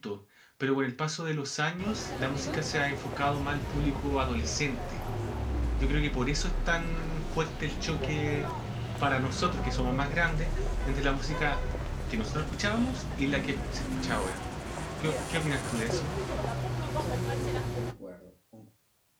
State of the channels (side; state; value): both; identical; correlation 1.00